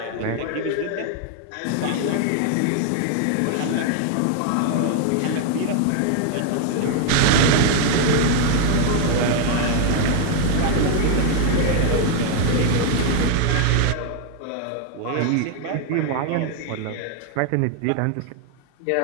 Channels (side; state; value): both; different; correlation 0.01